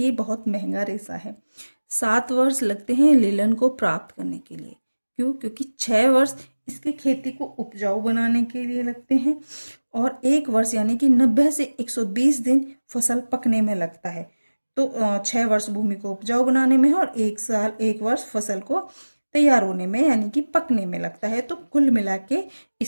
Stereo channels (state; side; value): inverted; both; correlation -1.00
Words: बहुत महंगा रेशा है। 7 वर्ष लगते हैं लिलन को प्राप्त करने के लिए। क्यों? क्योंकि 6 वर्ष इसकी खेती को उपजाऊ बनाने के लिए लगते हैं, और 1 वर्ष यानी कि 90 से 120 दिन फसल पकने में लगता है। तो 6 वर्ष भूमि को उपजाऊ बनाने में और 1 वर्ष फसल को तैयार होने में यानी कि पकने में लगता है। तो कुल मिला के